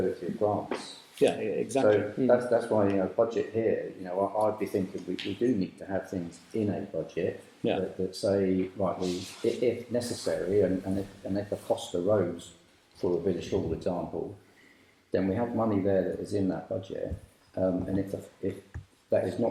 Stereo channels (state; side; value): identical; both; correlation 1.00